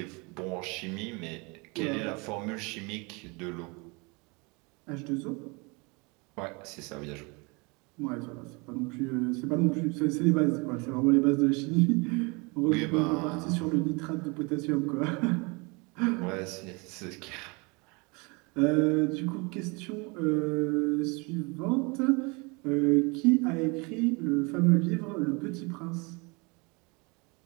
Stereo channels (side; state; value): left; quieter; 28.8 dB